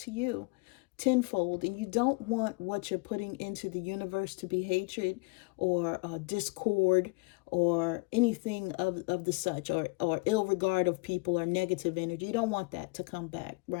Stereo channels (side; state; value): right; quieter; 28.5 dB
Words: you tenfold. And you don't want what you're putting into the universe to be hatred or discord or anything of the such, or ill regard of people or negative energy. You don't want that to come back,